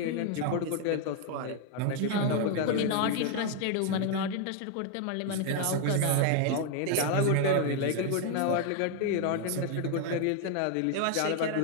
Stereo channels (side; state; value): both; different; correlation 0.01